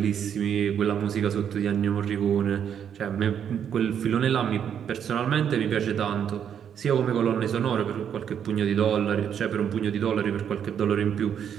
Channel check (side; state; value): left; quieter; 8.5 dB